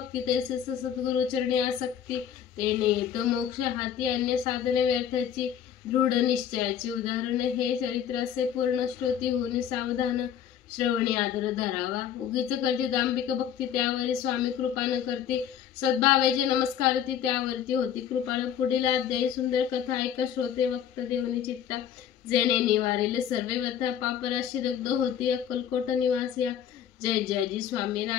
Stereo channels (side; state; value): right; quieter; 9.2 dB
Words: तैसे सद्गुरु चरणी आसक्ती. तेने येत मोक्ष हाती अन्य साधने व्यर्थाची. दृढ निश्चयाचे उदाहरण हे चरित्र असे पूर्ण श्रोती होऊन सावधान श्रवणी आदर धरावा. उगीच करते दांभिक भक्ती त्यावरी स्वामी कृपा न करते. सद्भावेचे नमस्कार ती त्यावरती होती कृपाळ. पुढील अध्यायी सुंदर कथा ऐका श्रोते वक्त देवनी चित्ता. जेणे निवारेल सर्वे व्यथा पापराशी दग्ध होती. अक्कलकोट निवासिया जय जयजी स्वामी